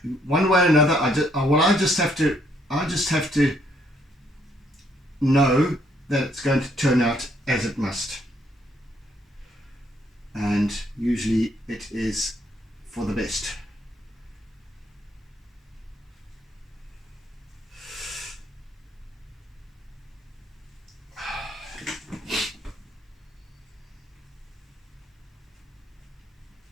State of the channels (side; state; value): both; normal; correlation 0.69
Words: one way or another. I just have to know that it's going to turn out as it must, and usually it is for the best.